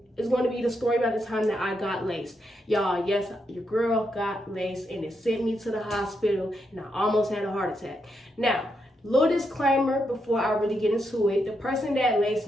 is going to be the story about the time that I got laced. Y'all, yes, your girl got laced and it sent me to the hospital and I almost had a heart attack. Now, little disclaimer before I really get into it. The person that laced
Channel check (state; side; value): normal; both; correlation 0.82